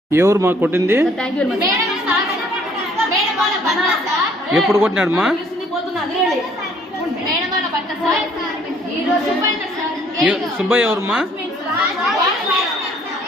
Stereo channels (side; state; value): both; normal; correlation 0.61